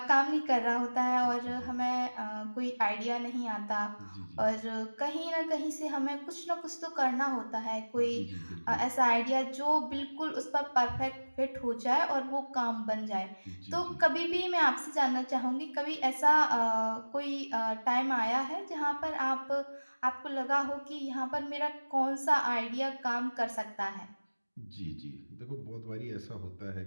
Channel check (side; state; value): both; inverted; correlation -1.00